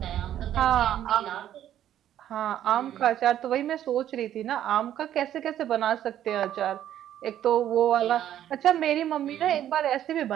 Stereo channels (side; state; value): left; quieter; 11.3 dB